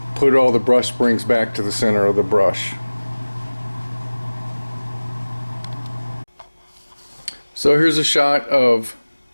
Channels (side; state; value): both; inverted; correlation -1.00